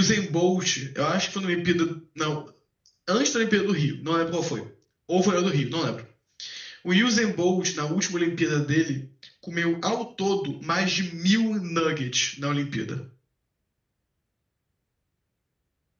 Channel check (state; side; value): identical; both; correlation 1.00